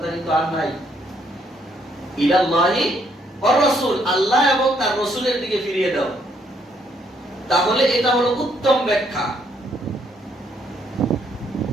কিন্তু আর নাই। ইলাল্লাহি ওয়ার রাসূল, আল্লাহ এবং তার রাসূলের দিকে ফিরিয়ে দাও। তাহলে এটা হলো উত্তম ব্যাখ্যা।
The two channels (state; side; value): normal; both; correlation 0.70